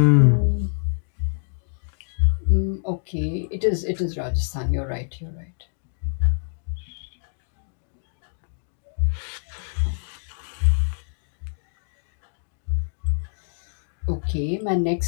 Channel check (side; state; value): right; silent; digital silence